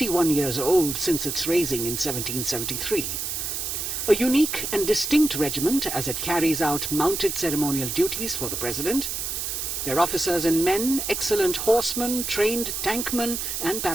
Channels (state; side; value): noise; right; hiss, 3 dB below the sound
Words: years old since its raising in 1773. A unique and distinct regiment as it carries out mounted ceremonial duties for the President. Their officers and men, excellent horsemen, trained tankmen and